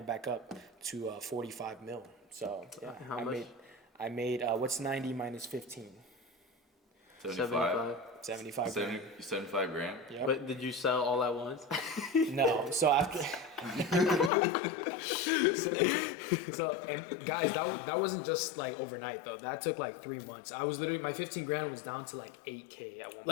back up to 45 mil. So yeah, How much? I made what's 90 minus 15? 75 grand. 75 grand. Yep. But did you sell all at once? No. So after, so and guys, that wasn't just like overnight though. That took like 3 months. I was literally, my 15 grand was down to like 8K at one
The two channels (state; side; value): drops out; right; at 14.3 s